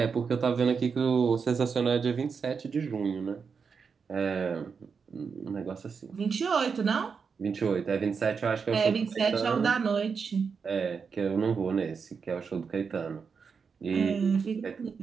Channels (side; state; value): left; quieter; 5.8 dB